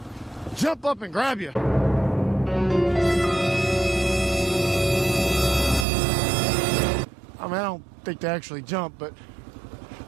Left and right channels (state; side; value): drops out; left; at 5.9 s